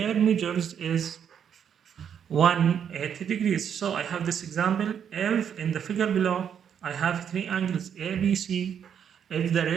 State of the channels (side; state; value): left; quieter; 8.3 dB